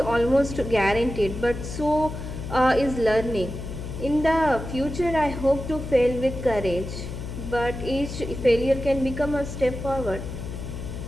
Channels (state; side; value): noise; left; hum, 8 dB below the sound